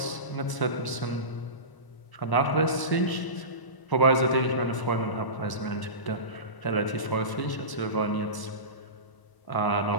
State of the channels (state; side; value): late; right; 1.0 ms